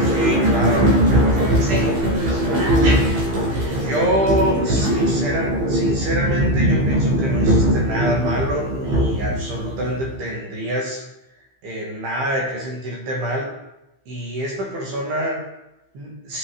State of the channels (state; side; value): late; left; 15 ms